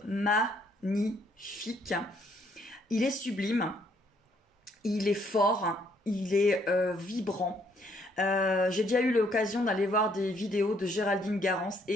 magnifique. Il est sublime, il est fort, il est vibrant. J'ai déjà eu l'occasion d'aller voir des vidéos de Géraldine Garance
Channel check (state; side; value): normal; both; correlation 0.68